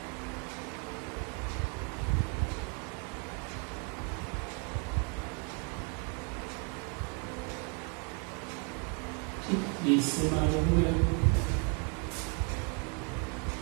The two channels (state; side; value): quieter; left; 36.3 dB